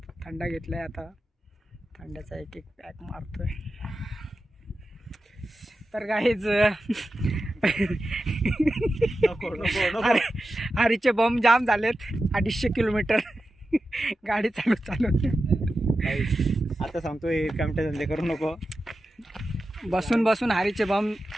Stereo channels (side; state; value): both; normal; correlation 0.92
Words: थंडा घेतलाय आता. थंड्याचा एक पॅक मारतोय. तर काहीच हरीचे बॉम्ब जाम झालेत. 250 किलोमीटर गाडी चालू. आता सांगतोय कामटे धंदे करू नको. बसून हरीचे बॉम्ब